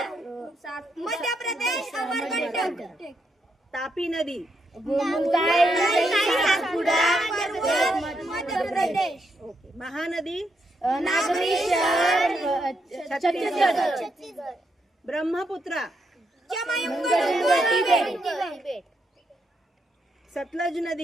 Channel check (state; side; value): normal; both; correlation 0.79